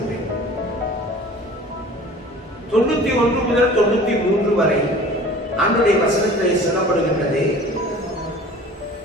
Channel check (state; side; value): normal; both; correlation 0.45